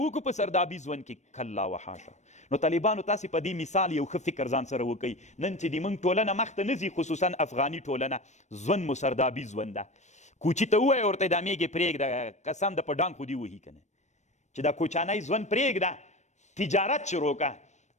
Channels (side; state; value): right; late; 0.34 ms